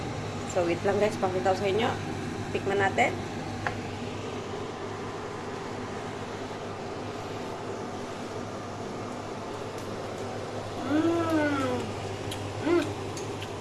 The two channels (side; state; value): both; identical; correlation 1.00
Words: So, wait lang guys. Pakita ko sa inyo. Tikman natin.